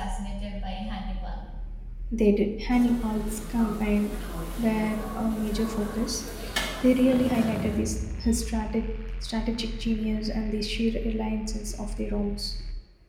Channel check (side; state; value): both; identical; correlation 1.00